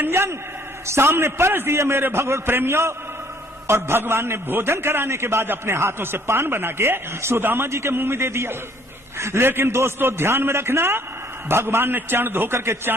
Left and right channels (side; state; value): both; normal; correlation 0.61